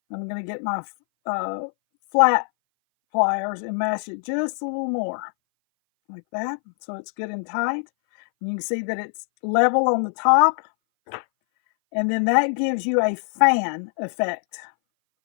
I'm going to get my flat pliers and mash it just a little more, like that, so it's good and tight. And you can see that it's level on the top, and then that gives you a fan effect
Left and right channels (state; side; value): silent; right; 60 dB below the other